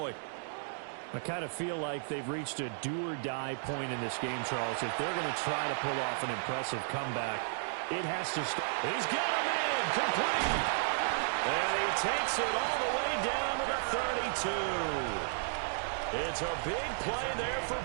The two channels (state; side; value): silent; left; digital silence